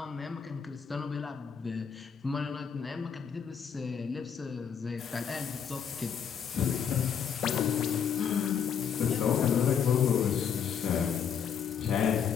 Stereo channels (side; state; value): right; quieter; 7.4 dB